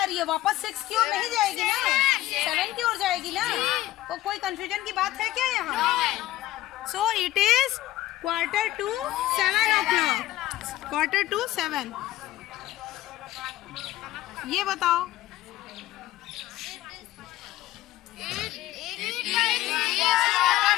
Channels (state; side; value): quieter; right; 15.7 dB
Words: रही है? वापस 6 की ओर नहीं जाएगी ना, 7 की ओर जाएगी ना। तो कोई कंफ्यूजन की बात है क्या यहाँ? So it is quarter to 7 o'clock। Quarter to 7। ये बताओ।